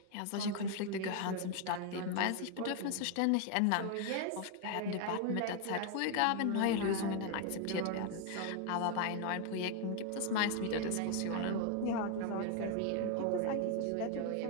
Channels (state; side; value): different; both; correlation 0.01